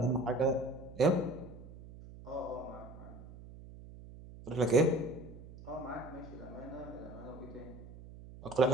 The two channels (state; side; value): noise; right; hum, 16 dB below the sound